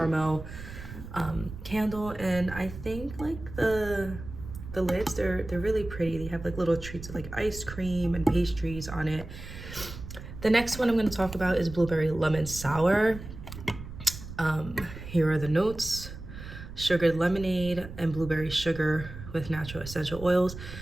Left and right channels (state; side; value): noise; right; rumble, 12 dB below the sound